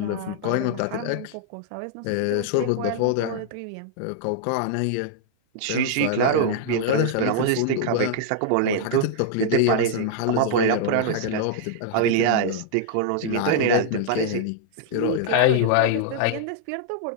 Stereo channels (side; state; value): both; different; correlation -0.01